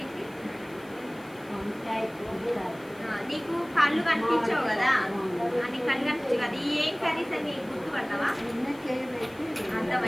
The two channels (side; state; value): left; noise; hiss, 26 dB below the sound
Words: ఏంటి? నీకు కళ్ళు కనిపించవు కదా, నీకు కళ్ళు కనిపించవు కదా, ఈ ఏం కర్రీస్ అని గుర్తుపడతావా?